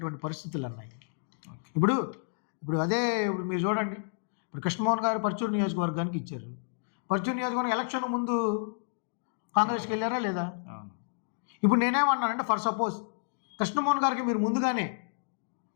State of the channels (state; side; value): silent; right; digital silence